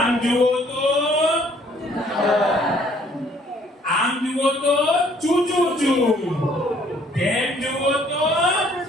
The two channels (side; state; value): both; normal; correlation 0.61